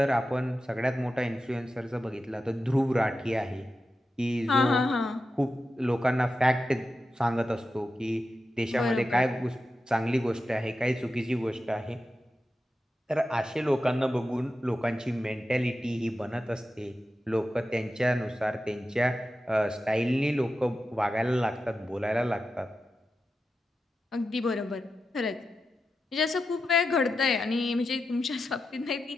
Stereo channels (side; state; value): both; normal; correlation 0.90